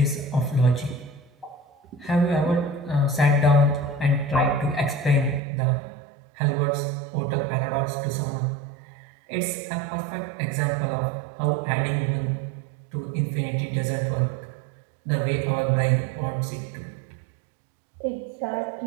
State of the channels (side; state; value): left; drops out; at 5.4 s